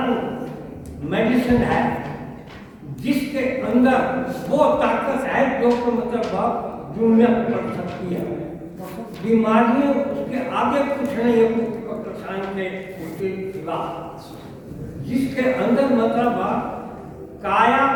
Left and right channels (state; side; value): identical; both; correlation 1.00